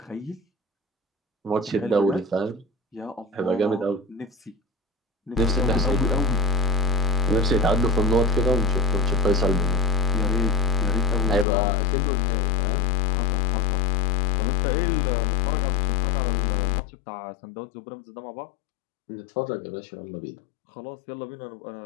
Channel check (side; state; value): right; drops out; at 11.5 s